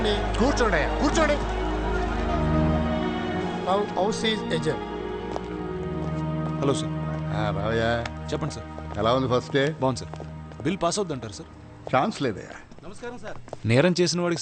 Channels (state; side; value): identical; both; correlation 1.00